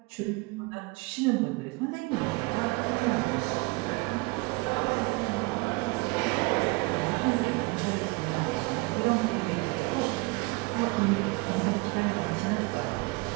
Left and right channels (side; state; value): left; quieter; 26.2 dB